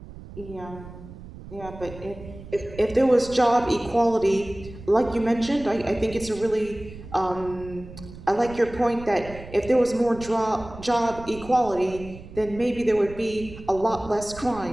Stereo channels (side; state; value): right; noise; rumble, 15 dB below the sound